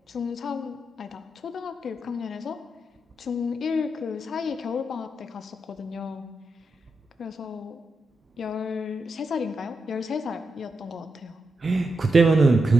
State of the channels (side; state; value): both; normal; correlation 0.86